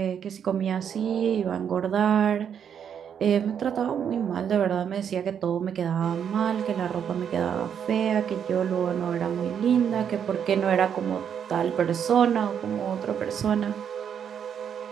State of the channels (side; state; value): left; quieter; 8.1 dB